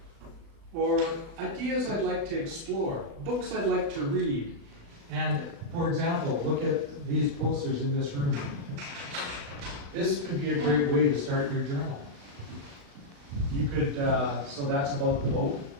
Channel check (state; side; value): late; left; 36 ms